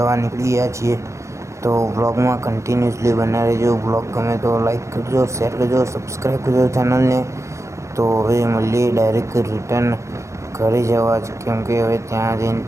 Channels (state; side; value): late; left; 0.14 ms